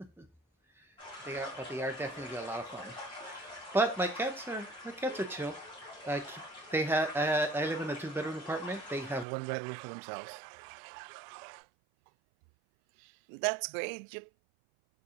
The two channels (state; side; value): drops out; left; at 9.2 s